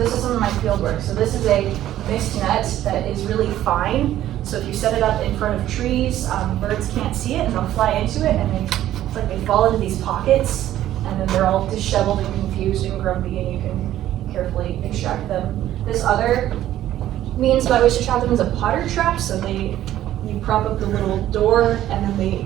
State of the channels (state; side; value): quieter; left; 12.9 dB